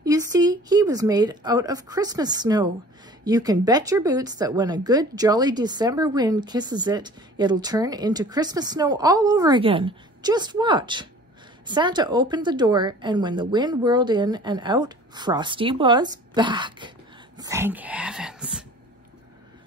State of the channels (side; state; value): both; normal; correlation 0.46